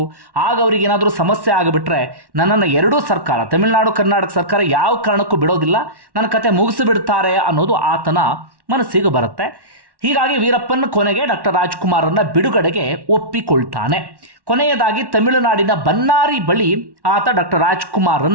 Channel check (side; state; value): left; late; 1.1 ms